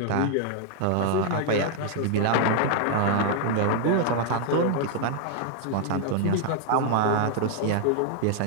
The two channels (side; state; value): both; different; correlation 0.00